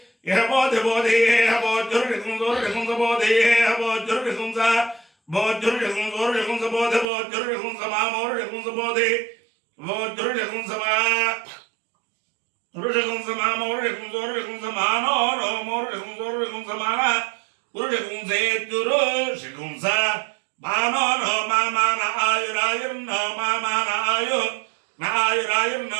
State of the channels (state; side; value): drops out; left; at 7.1 s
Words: హబోధి బోధి హబోధురుడికుంస బోధి హబోధురుడికుంస బోధురుడికుంస బోధి బోధురుడికుంస మామోరుడికుంస బోధి బోధురుడికుంస మా రుడికుంస మామోరుడికుంస మానో రోమోరుడికుంస మాన గురుడికుంసేత్యురు శికుంస మానో నో మామాన ఆయురాయుర్నో మామాన ఆయు నాయురాయుర్నో